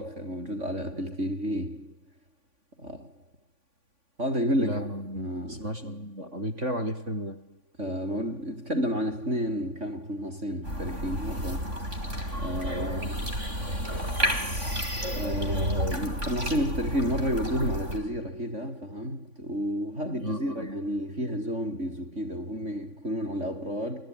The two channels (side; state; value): left; late; 3.5 ms